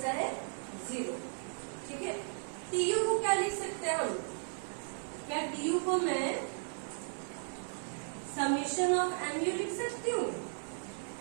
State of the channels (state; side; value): silent; left; digital silence